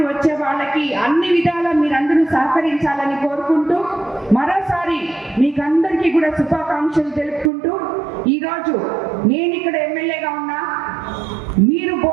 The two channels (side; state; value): left; drops out; at 7.5 s